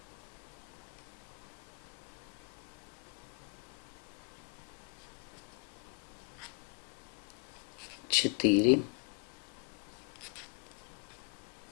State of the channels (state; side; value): quieter; right; 35.9 dB